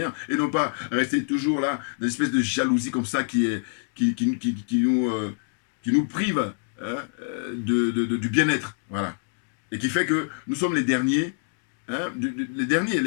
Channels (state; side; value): silent; right; 61 dB below the other